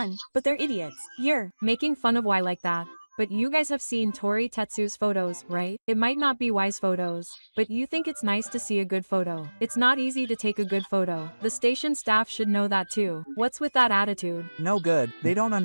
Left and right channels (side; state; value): both; inverted; correlation -1.00